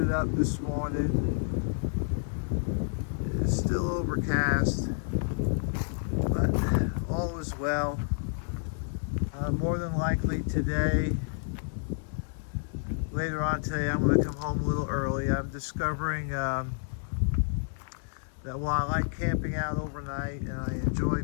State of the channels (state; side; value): silent; right; digital silence